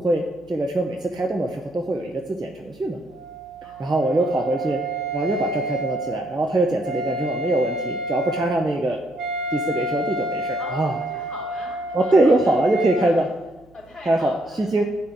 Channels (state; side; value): noise; right; hum, 29 dB below the sound